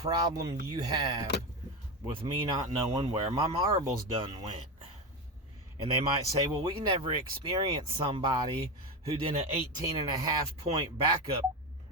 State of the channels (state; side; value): normal; both; correlation 0.17